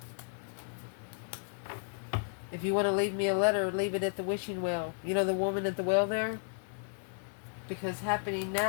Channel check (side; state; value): right; silent; 55 dB below the other